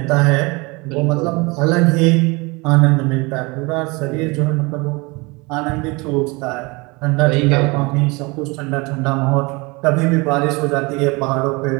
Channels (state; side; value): quieter; left; 26.2 dB